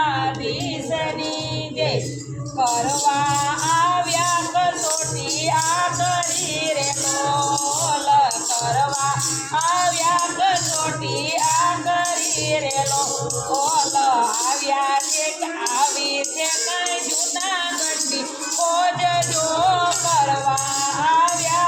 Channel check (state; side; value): identical; both; correlation 1.00